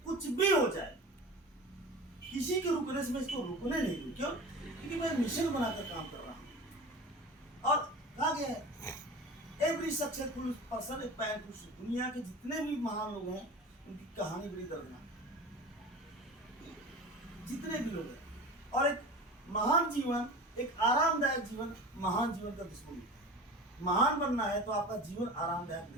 कुछ भी हो जाए, किसी के रुकने से मैं इसको रुकने नहीं दूँ। क्यों? क्योंकि मैं मिशन बनाकर काम कर रहा हूँ। और कहा गया है every successful person a pan to sleep. दुनिया के जितने भी महान लोग हैं उनकी कहानी बड़ी दर्दनाक है, जितने भी लोग हैं। और एक महान जीवन, एक आरामदायक जीवन महान जीवन का दुश्मन है। महान बनना है तो आपका जीवन आरामदायक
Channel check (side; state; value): both; normal; correlation 0.34